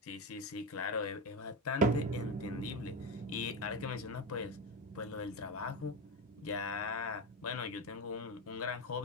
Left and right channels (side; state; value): both; normal; correlation 0.17